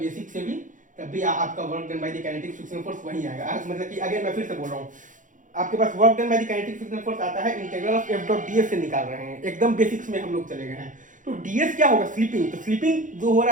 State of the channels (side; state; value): left; late; 0.37 ms